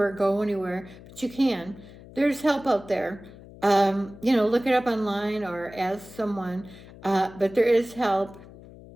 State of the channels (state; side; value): noise; left; hum, 19 dB below the sound